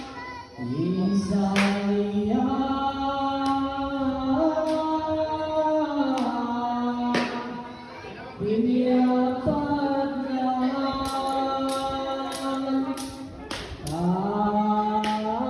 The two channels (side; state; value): both; identical; correlation 1.00